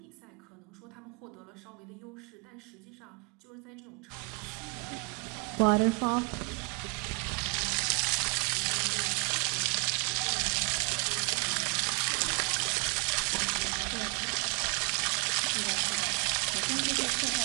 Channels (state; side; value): quieter; left; 33.2 dB